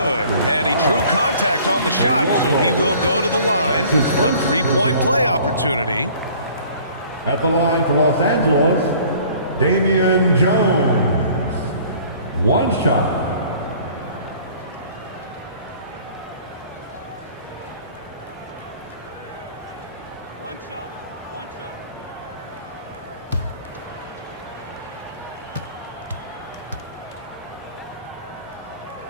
And he drew contact on the shot, so he will go to the line. A 3-point play opportunity. At the line for Los Angeles, Damian Jones. 1 shot. One shot.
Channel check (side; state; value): both; inverted; correlation -0.51